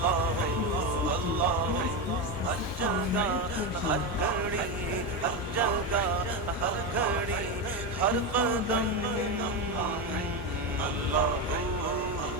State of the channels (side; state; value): both; normal; correlation 0.13